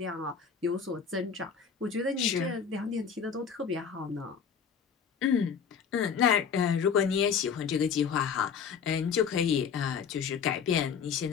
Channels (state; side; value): quieter; right; 6.8 dB